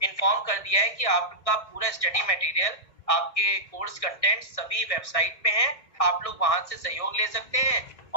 इन्फॉर्म कर दिया है कि आपका पूरा स्टडी मटेरियल, आपके कोर्स कंटेंट सभी वेबसाइट पे हैं, आप लोग वहां से सहयोग ले सकते हैं।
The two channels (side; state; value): right; late; 1.6 ms